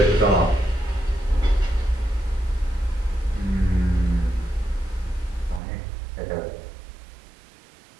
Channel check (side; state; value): left; drops out; at 5.6 s